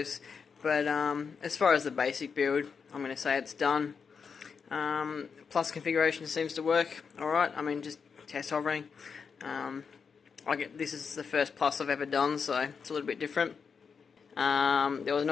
But as far as the basic build, I'm going to say it's done. Plus configuration seems to work alright. I mean, just test hovering. This is the first Plus I've ever done, so it's a little bit different. There was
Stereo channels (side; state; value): right; quieter; 5.9 dB